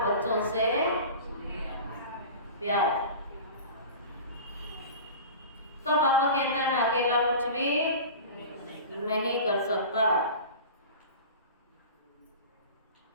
बच्चों से प्यार। तो पापा कहता है मैं अकेला कुछ भी नहीं कर सकता।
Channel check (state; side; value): inverted; both; correlation -0.35